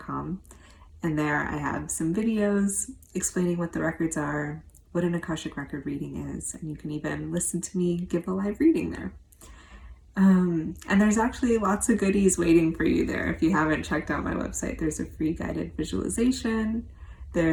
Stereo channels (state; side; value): identical; both; correlation 1.00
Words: and there I have some videos explaining what the records are, what an Akashic Record reading is, and you can even listen to me give a live reading there. And there's actually lots of goodies waiting for you there. If you haven't checked out my website, there's a free guided visualization,